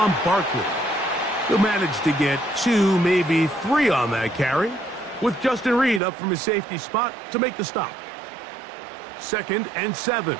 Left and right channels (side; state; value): left; drops out; at 6.0 s